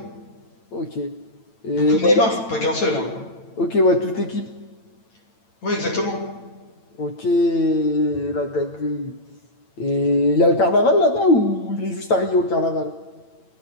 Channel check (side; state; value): right; late; 8.9 ms